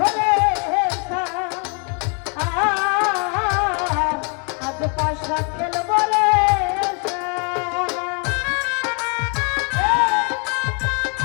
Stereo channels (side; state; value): right; quieter; 37.3 dB